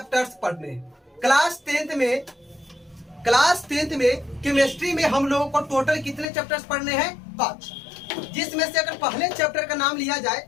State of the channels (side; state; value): right; drops out; at 6.2 s